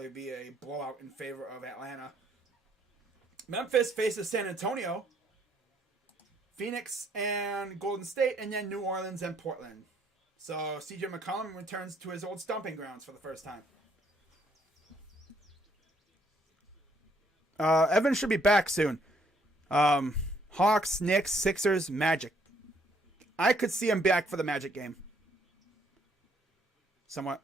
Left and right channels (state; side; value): normal; both; correlation 0.67